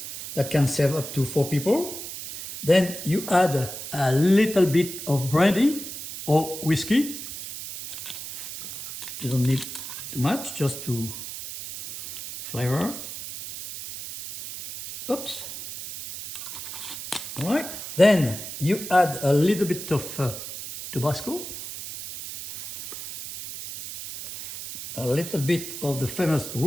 That can serve up to 4 people. Then you add a little bit of brandy or whiskey. You don't need too much, just to flavor. Oops. All right. Then you add a little bit of tabasco, a little bit of the famous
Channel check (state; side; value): noise; right; hiss, 9 dB below the sound